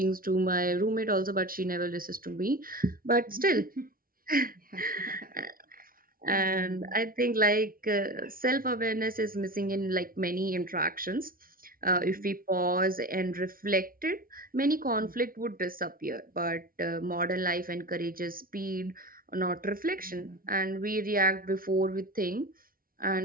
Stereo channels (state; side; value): late; left; 0.42 ms